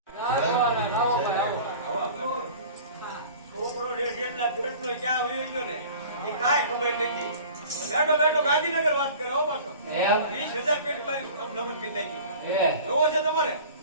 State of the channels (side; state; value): both; inverted; correlation -0.42